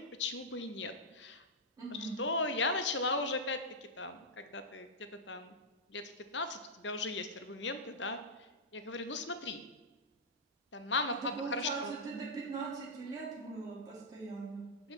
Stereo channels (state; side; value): normal; both; correlation -0.08